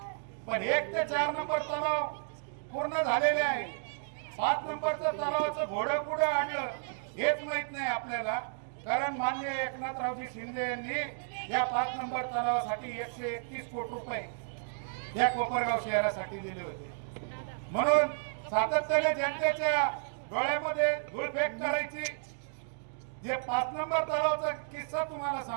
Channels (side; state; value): left; silent; digital silence